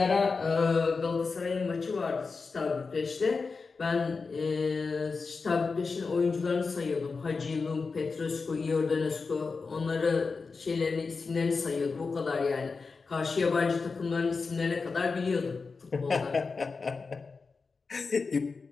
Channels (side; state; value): right; quieter; 4.5 dB